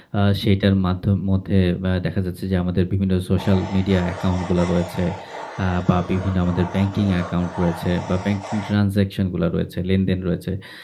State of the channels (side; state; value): both; identical; correlation 1.00